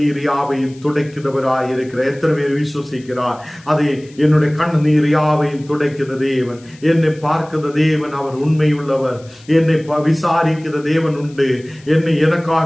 யாவையும் துடைக்கிறவராய் இருக்கிறார். எத்தனை பேர் விசுவசிக்கிறார்? என்னுடைய கண்ணீர் யாவையும் துடைக்கிற தேவன், என்னை பார்க்கிற தேவன், அவர் உண்மை உள்ளவர். என்னை விசாரிக்கிற தேவன் உண்டு.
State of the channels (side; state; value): left; noise; hiss, 26 dB below the sound